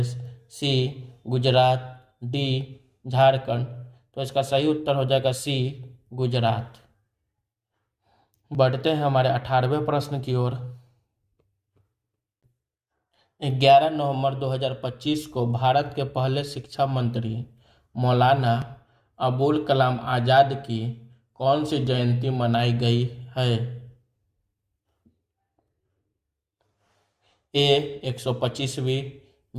सी, गुजरात, डी, झारखंड। तो इसका सही उत्तर हो जाएगा सी, गुजरात। बढ़ते हैं हमारे 18वें प्रश्न की ओर। 11 नवंबर 2025 को भारत के पहले शिक्षा मंत्री मौलाना अबुल कलाम आज़ाद की कौन सी जयंती मनाई गई है? ए, 125वीं,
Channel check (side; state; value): both; identical; correlation 1.00